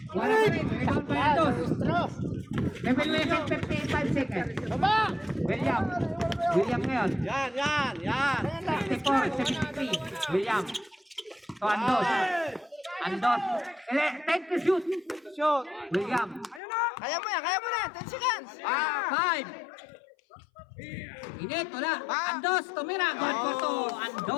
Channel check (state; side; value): drops out; right; at 16.6 s